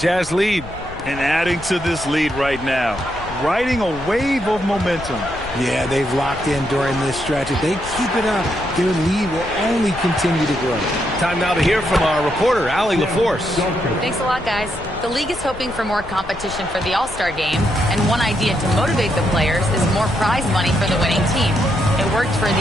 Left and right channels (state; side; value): noise; left; rumble, 15 dB below the sound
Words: lead. And adding to this lead right now, riding a wave of momentum. Yeah, they've locked in during this stretch. If they keep it up, their lead will only continue to grow. Time now to hear from our reporter, Allie LaForce. Thanks a lot, guys. The league is hoping for more competition for the All-Star game, and one idea to motivate the players is more prize money for the winning team. It worked for